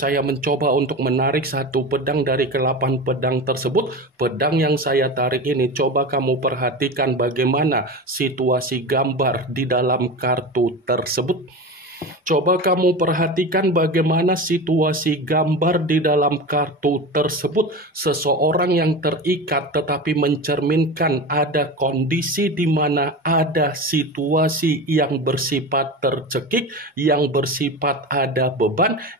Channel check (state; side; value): normal; both; correlation 0.27